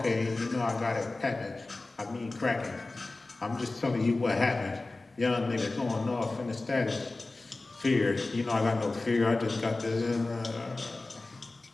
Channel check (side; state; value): right; quieter; 3.2 dB